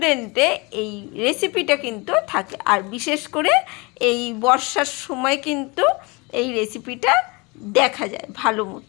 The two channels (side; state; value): right; quieter; 27.0 dB